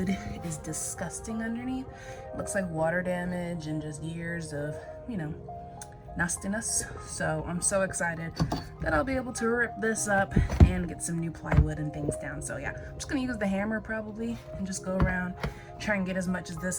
is disgusting underneath. It looks like water damage and just years of, you know, nastiness. So I'm so excited that I'll be able to rip this up and get some new plywood and things down. So yeah, I'm just gonna use the hammer probably and just go around, try and get as much of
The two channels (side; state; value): both; identical; correlation 1.00